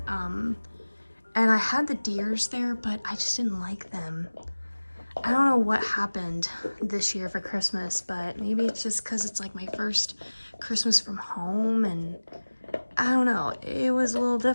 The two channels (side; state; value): both; inverted; correlation -1.00